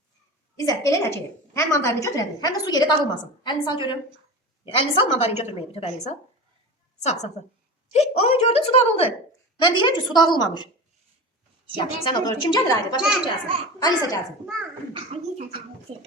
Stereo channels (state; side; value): normal; both; correlation 0.29